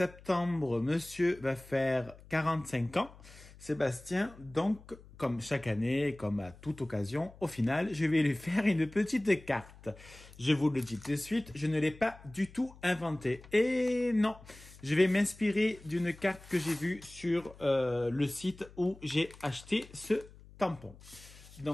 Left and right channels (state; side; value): noise; left; hum, 21 dB below the sound